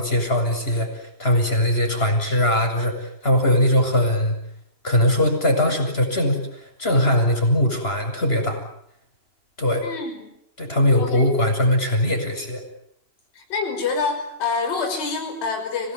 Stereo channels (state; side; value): late; right; 2.9 ms